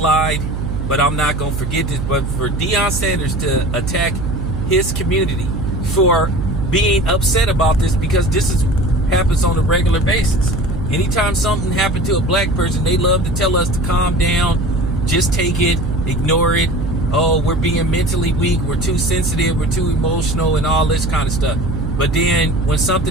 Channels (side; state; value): right; noise; hum, 4 dB below the sound